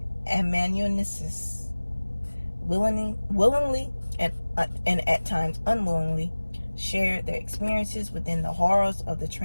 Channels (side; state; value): both; inverted; correlation -1.00